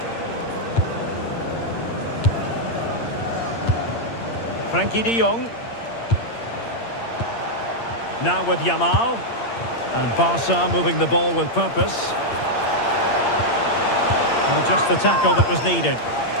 Frankie de Jong. Now with Yamal. And Barca moving the ball with purpose. And just the tackle that was needed.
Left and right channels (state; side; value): late; right; 8.7 ms